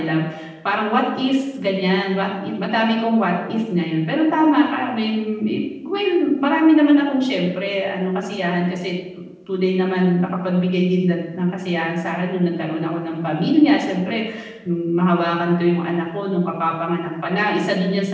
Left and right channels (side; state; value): both; identical; correlation 1.00